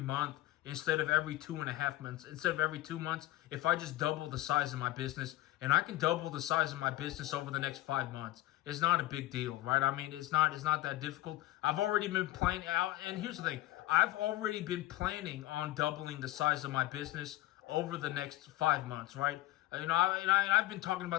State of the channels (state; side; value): quieter; right; 16.3 dB